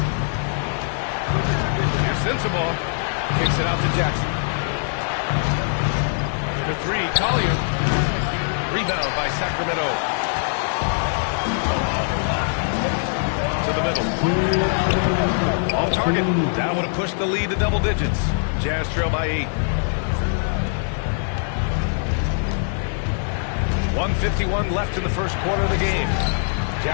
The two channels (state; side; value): silent; right; 56 dB below the other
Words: Here's Sensabaugh. Kicks it out to Jackson. For three, Collier. Rebound by Sacramento. To the middle. Off target. That would have pushed the lead to double digits. Jazz trail by 8. 1:51 left in the first quarter of the game.